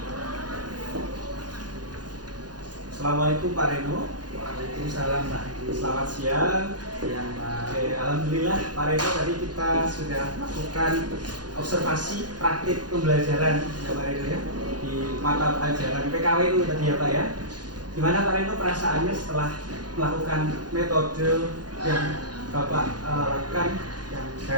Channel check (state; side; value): late; left; 0.69 ms